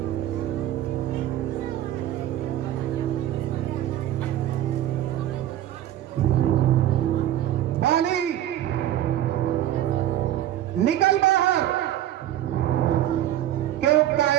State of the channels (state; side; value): quieter; left; 12.6 dB